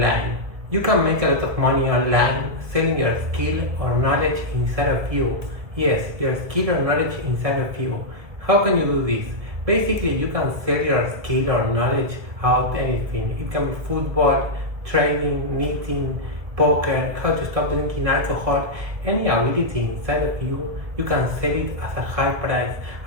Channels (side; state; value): left; late; 1.7 ms